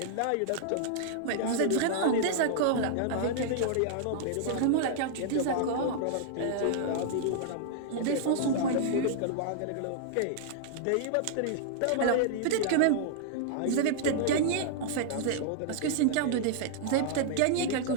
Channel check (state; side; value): different; both; correlation -0.01